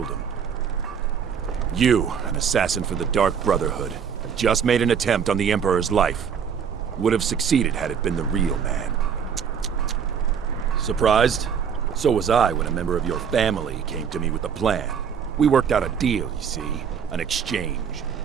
him. You, an assassin for the Dark Brotherhood, have just made an attempt on the Emperor's life. Would have succeeded had it been the real man. Surprised? So was I when a member of your family came to me with a plan. We worked out a deal, you see. An exchange.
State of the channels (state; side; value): quieter; left; 7.3 dB